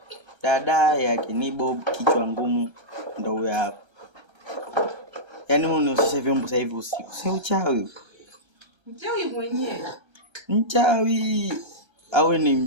Dada yake ni Bobu kichwa ngumu ndio huyo hapo. Yaani unihusishe vyombo sasa hivi usiku. Si uchawi. Mchawi mwenyewe. Mchawi au ni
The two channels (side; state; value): left; late; 1.3 ms